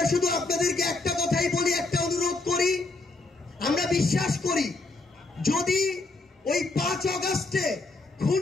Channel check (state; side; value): quieter; right; 3.4 dB